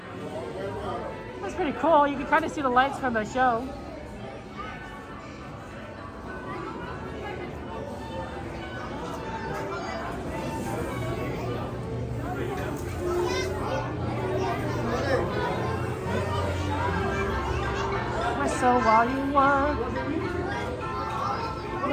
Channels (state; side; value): identical; both; correlation 1.00